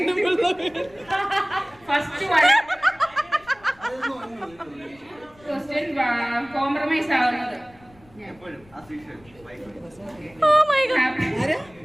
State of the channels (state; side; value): noise; left; rumble, 27 dB below the sound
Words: ഫസ്റ്റ് ക്വസ്റ്റ്യൻ കോംപ്രമൈസ് ആവുന്നത് എപ്പോഴും ആ സീഷൻ ഓ മൈ ഗോഡ്,